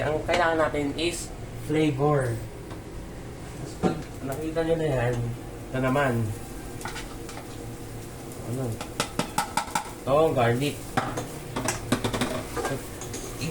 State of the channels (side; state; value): both; identical; correlation 1.00